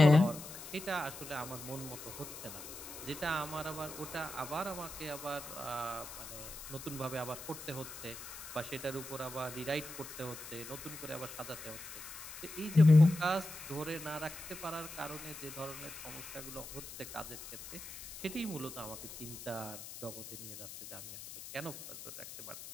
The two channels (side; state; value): left; noise; hiss, 12 dB below the sound